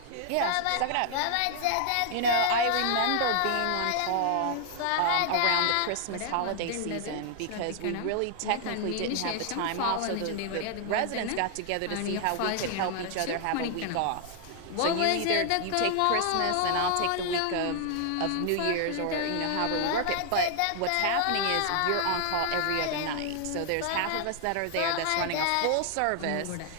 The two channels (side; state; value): both; different; correlation 0.00